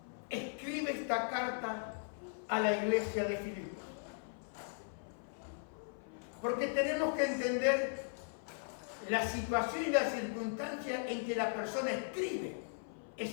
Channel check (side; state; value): right; silent; 52 dB below the other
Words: escribe esta carta a la iglesia de Filipos. Porque tenemos que entender la situación y la circunstancia en que la persona escribe